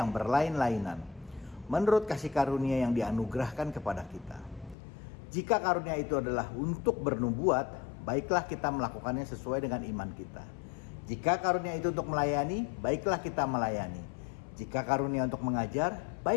berlain-lainan, menurut kasih karunia yang dianugerahkan kepada kita. Jika karunia itu adalah untuk bernubuat, baiklah kita melakukannya sesuai dengan iman kita. Jika karunia itu untuk melayani, baiklah kita melayani. Jika karunia untuk mengajar,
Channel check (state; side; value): drops out; right; at 4.8 s